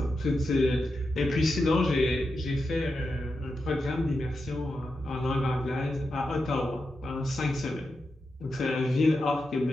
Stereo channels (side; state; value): both; normal; correlation 0.88